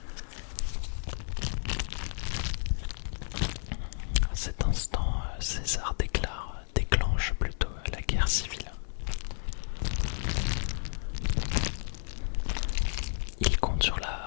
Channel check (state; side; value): silent; right; digital silence